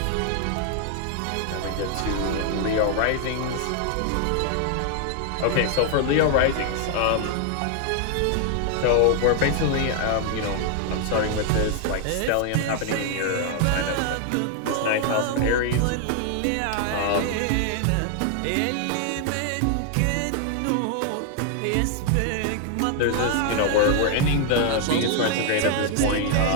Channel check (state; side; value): different; both; correlation 0.00